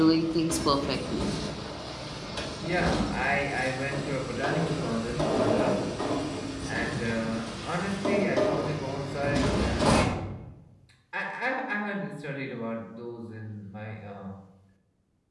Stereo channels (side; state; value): both; identical; correlation 1.00